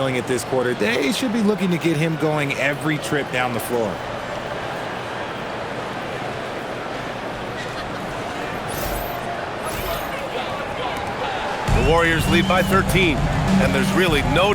it this quarter. They should be looking to get him going every trip down the floor. The Warriors lead by 13. And there's really no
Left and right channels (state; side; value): identical; both; correlation 1.00